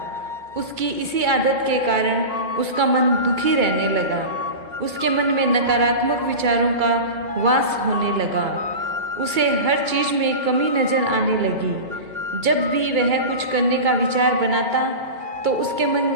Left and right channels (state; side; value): late; left; 2.0 ms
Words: उसकी इसी आदत के कारण उसका मन दुखी रहने लगा। उसके मन में नकारात्मक विचारों का वास होने लगा। उसे हर चीज में कमी नजर आने लगी। जब भी वह कुछ करने का विचार बनाता तो उसके मन